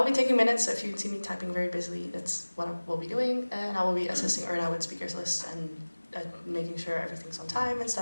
be taking minutes, so if you see me typing very busily, that's what I will be doing. And I will be assisting Erna with speakers lists and making sure everything's on time and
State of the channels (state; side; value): inverted; both; correlation -1.00